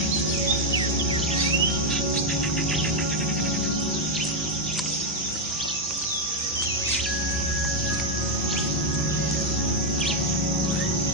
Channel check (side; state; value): both; normal; correlation 0.01